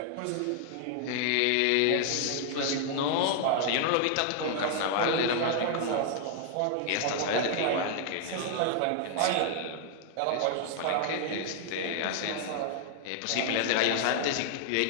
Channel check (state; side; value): different; both; correlation 0.00